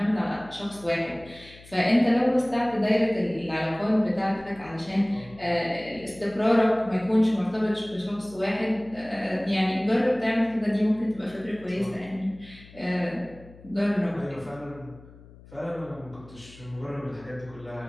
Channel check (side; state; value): left; noise; hum, 21 dB below the sound